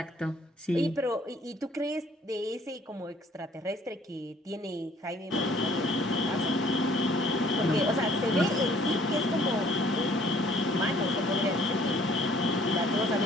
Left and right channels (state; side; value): normal; both; correlation 0.58